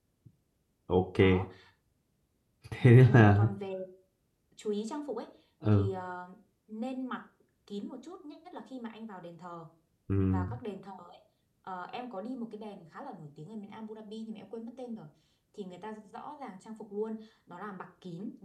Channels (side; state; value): both; identical; correlation 1.00